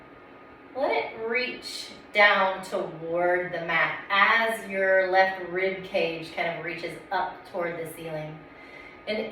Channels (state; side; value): identical; both; correlation 1.00